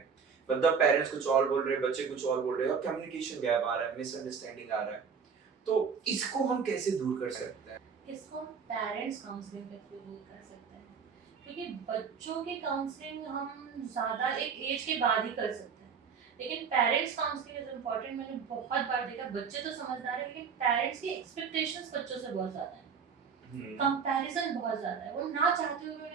मतलब पेरेंट्स कुछ और बोल रहे हैं, बच्चे कुछ और बोल रहे हैं, और कम्युनिकेशन गैप आ रहा है, मिसअंडरस्टैंडिंग आ रहा है। तो इसको हम कैसे दूर कर सकते हैं? इसको हम पेरेंट्स काउंसलिंग के थ्रू दूर कर सकते हैं, क्योंकि बच्चों की काउंसलिंग हम ज़्यादा एक एज के बाद ही कर सकते हैं, लेकिन पेरेंट्स काउंसलिंग इज इम्पॉर्टेंट। मैंने बहुत बार देखा बच्चे तो समझदार है लेकिन पेरेंट्स की एक्सपेक्टेशंस बच्चों से बहुत ज़्यादा है, कंपैरिजन बहुत ज़्यादा है, वो ना चाहते हुए भी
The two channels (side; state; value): left; quieter; 6.2 dB